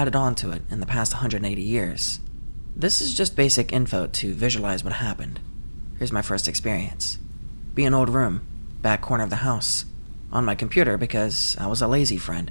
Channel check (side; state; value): both; inverted; correlation -1.00